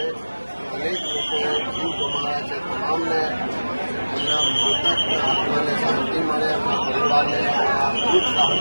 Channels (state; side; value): inverted; both; correlation -1.00